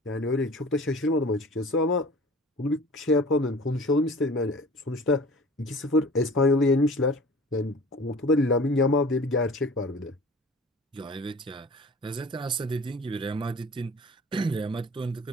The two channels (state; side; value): normal; both; correlation 0.43